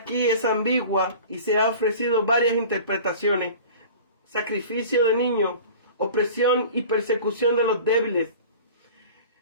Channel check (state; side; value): inverted; both; correlation -0.40